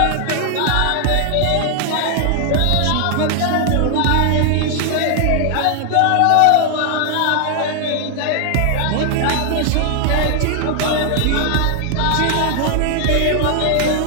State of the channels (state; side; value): different; both; correlation 0.00